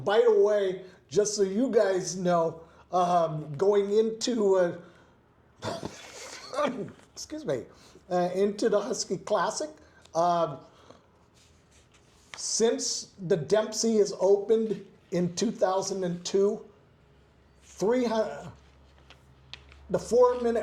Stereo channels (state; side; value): identical; both; correlation 1.00